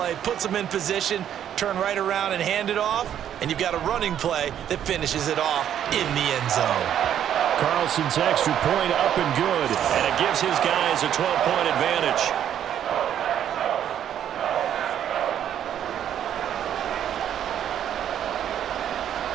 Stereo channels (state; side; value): quieter; left; 10.0 dB